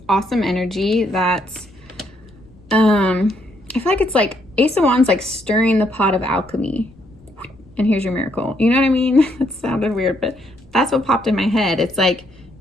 awesome energy. That's, I feel like it's like Ace of Wands, like stirring the pot of alchemy. And here's your miracle. You know what I mean? That sounded weird, but that's what popped in my head. It's like,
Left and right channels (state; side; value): noise; left; rumble, 27 dB below the sound